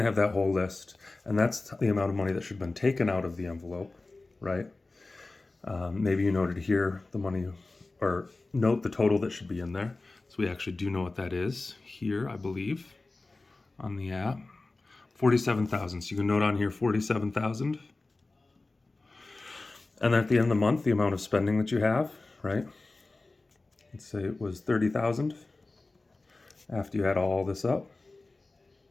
to have that whole list, and that's the amount of money that should have been taken out of the envelope, right? Maybe you noted here the money, or note the total that should be in there. So we actually do know what that is here, I believe, on the app. 47,000. So you can note on here 47,000. And at the end of the month, the amount of spending that you have, right? Let's say it was 30,000 after you add all this up.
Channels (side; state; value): right; quieter; 3.3 dB